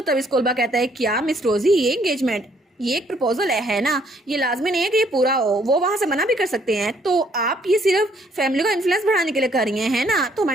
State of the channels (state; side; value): normal; both; correlation 0.66